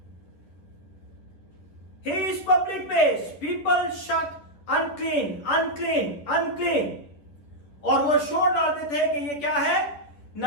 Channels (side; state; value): right; late; 10 ms